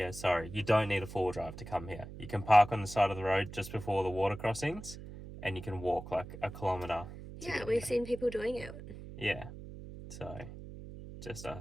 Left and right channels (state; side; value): noise; right; hum, 12 dB below the sound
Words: sorry. You don't need a four-wheel drive to come here. You can park on the side of the road just before the water crossings and you can walk like a kilometre. Yeah, we've seen people doing it. Yeah, so just